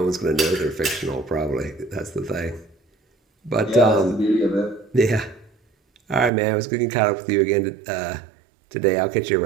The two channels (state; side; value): drops out; left; at 6.3 s